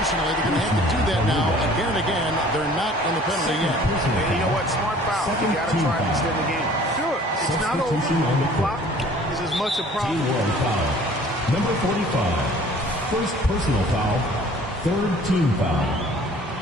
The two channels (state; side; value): normal; both; correlation 0.51